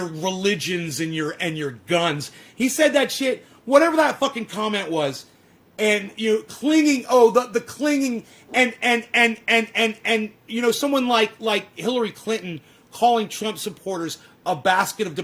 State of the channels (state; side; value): identical; both; correlation 1.00